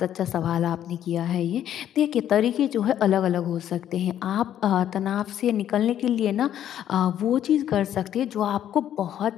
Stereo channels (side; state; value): right; quieter; 10.7 dB